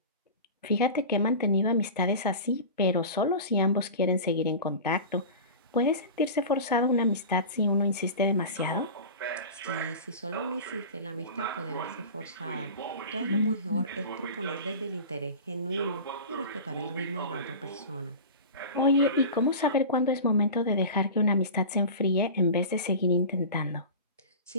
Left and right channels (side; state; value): both; inverted; correlation -0.32